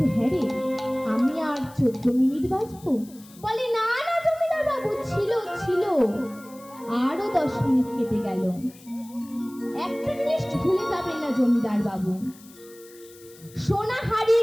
হ্যাঁ রে, আমি আর 14 মিনিট বাজবো? বলে না না জমিদার বাবু, ছিল ছিল, আরো 10 মিনিট কেটে গেল। একটা জিনিস ভুলে যাবেন না জমিদার বাবু, সোনা হারিয়ে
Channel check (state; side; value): noise; left; hiss, 23 dB below the sound